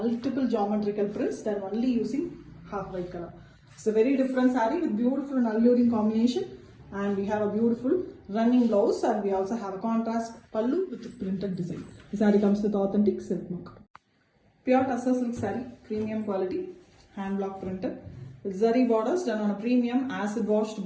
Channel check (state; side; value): identical; both; correlation 1.00